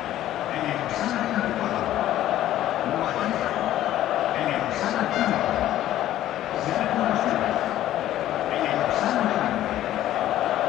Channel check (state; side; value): quieter; right; 13.1 dB